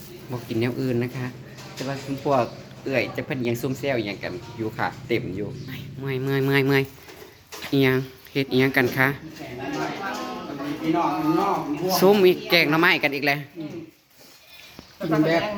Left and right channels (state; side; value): identical; both; correlation 1.00